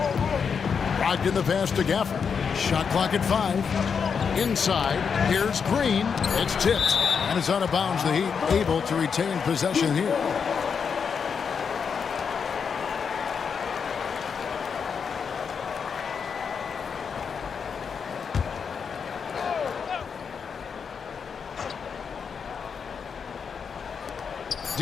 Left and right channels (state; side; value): quieter; right; 6.3 dB